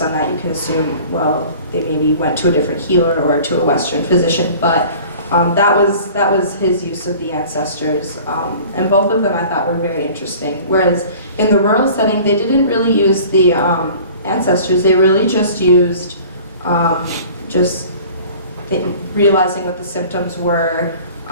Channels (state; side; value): inverted; both; correlation -0.45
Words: that, you can assume, well, they maybe went to a different healer or to a Western physician, but that was his use of the ancestors. And both of them I thought were very interesting. Whereas in the rural setting, they didn't really use the ancestors, they really just used realizing what the symptoms were